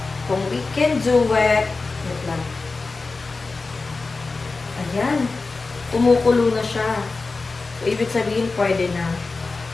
kung we can do it. Wait lang. Ayan. Kumukulo na siya. So, ibig sabihin, pwede na.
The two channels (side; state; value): right; quieter; 3.8 dB